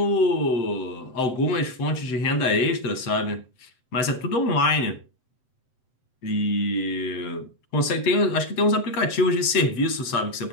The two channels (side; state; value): right; late; 7.8 ms